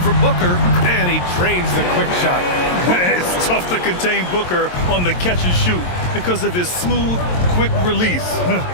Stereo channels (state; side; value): late; right; 22 ms